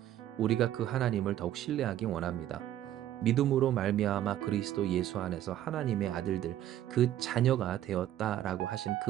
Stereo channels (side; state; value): left; quieter; 12.3 dB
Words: 우리가 그 하나님을 더욱 신뢰하기 원합니다. 믿음으로 말미암아 그리스도 예수 안에서 하나님의 아들들, 그 자녀가 되었다라고 하신 그